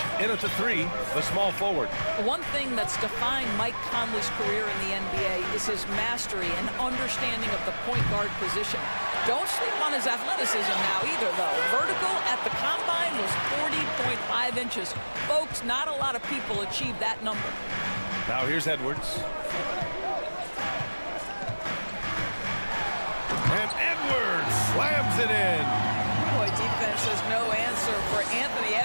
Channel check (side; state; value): both; inverted; correlation -1.00